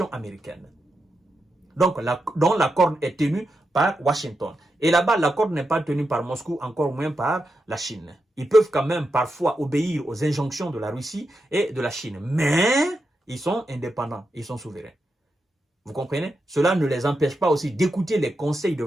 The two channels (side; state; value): both; normal; correlation 0.87